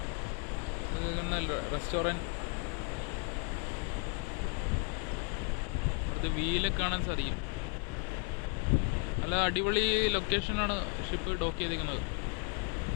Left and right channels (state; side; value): quieter; right; 34.7 dB